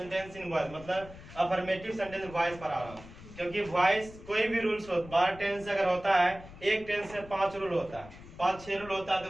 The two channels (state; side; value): noise; left; rumble, 17 dB below the sound